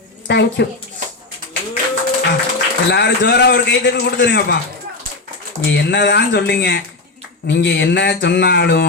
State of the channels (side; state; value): right; quieter; 3.4 dB